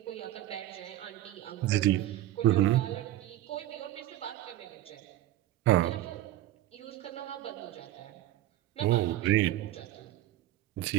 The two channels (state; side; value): quieter; left; 14.2 dB